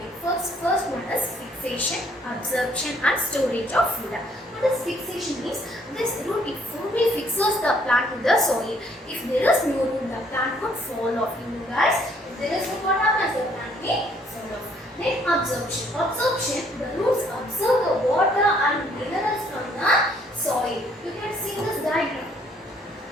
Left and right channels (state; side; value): normal; both; correlation 0.64